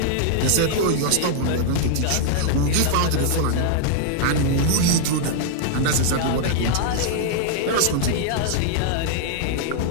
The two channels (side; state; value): both; different; correlation 0.00